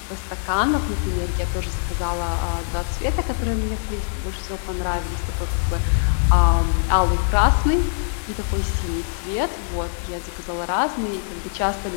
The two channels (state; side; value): silent; right; digital silence